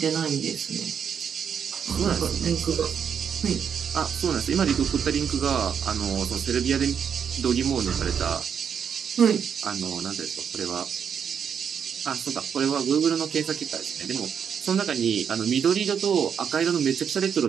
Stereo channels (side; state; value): left; quieter; 7.5 dB